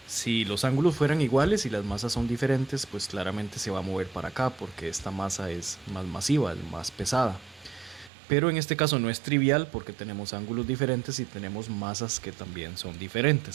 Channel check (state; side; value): drops out; left; at 8.1 s